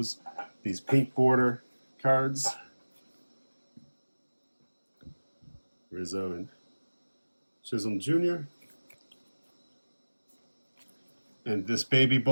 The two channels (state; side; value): inverted; both; correlation -1.00